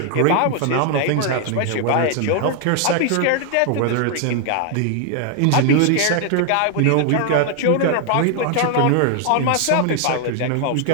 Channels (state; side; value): different; both; correlation 0.00